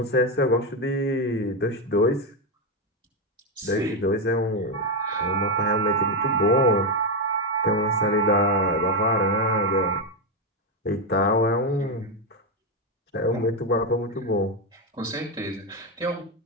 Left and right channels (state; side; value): normal; both; correlation 0.07